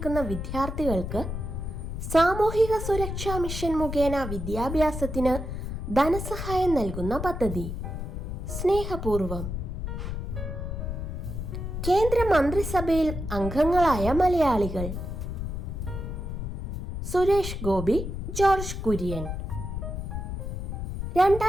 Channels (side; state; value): left; noise; rumble, 5 dB below the sound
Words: വിദ്യാർത്ഥികൾക്ക് സാമൂഹിക സുരക്ഷാ മിഷൻ മുഖേന വിദ്യാഭ്യാസത്തിന് ധനസഹായം നൽകുന്ന പദ്ധതി? സ്നേഹപൂർവം. കേന്ദ്ര മന്ത്രിസഭയിൽ അംഗങ്ങളായ മലയാളികൾ? സുരേഷ് ഗോപി, ജോർജ് കുര്യൻ.